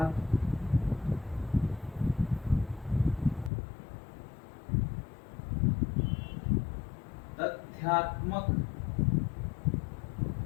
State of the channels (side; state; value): right; drops out; at 3.5 s